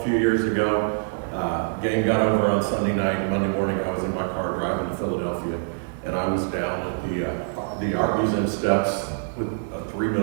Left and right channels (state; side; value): silent; left; digital silence